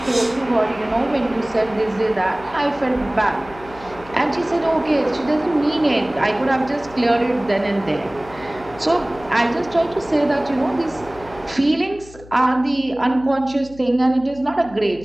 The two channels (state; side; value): noise; left; hum, 20 dB below the sound